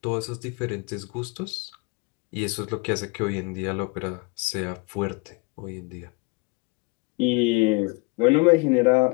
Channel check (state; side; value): quieter; right; 28.5 dB